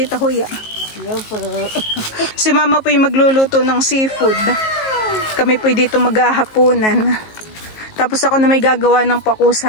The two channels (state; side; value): late; right; 19 ms